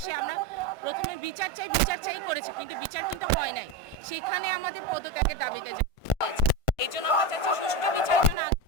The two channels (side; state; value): right; late; 1.5 ms